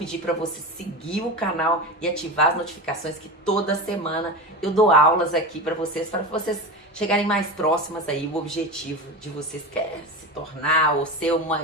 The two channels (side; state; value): both; normal; correlation 0.24